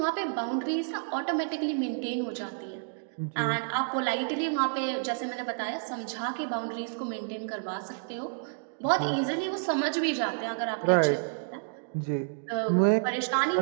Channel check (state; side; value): silent; left; digital silence